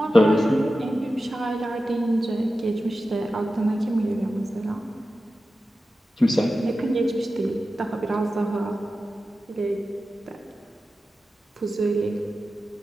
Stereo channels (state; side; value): normal; both; correlation 0.93